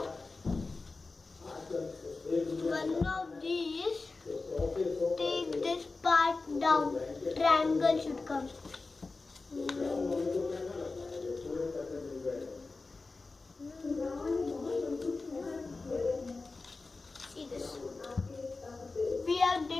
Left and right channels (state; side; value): quieter; right; 3.7 dB